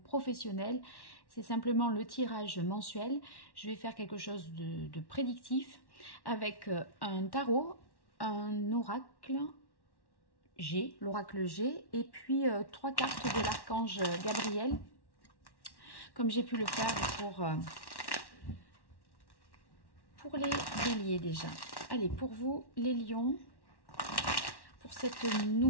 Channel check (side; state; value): right; late; 1.1 ms